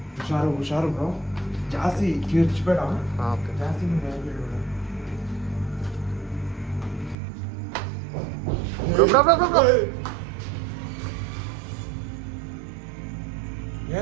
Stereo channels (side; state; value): left; drops out; at 7.2 s